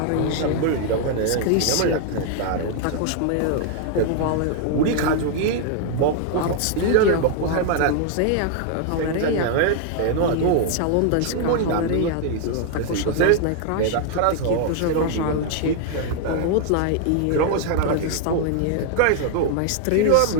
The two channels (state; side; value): different; both; correlation 0.00